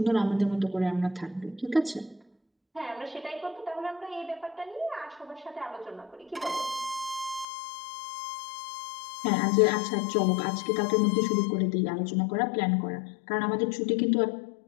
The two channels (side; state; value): right; drops out; at 7.5 s